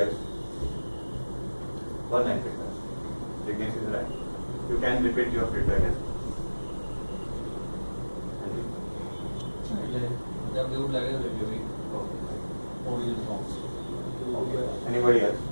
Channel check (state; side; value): inverted; both; correlation -1.00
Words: else? One line feedback. Ignis is right. You can repeat your feedback as well. Okay. Anybody else?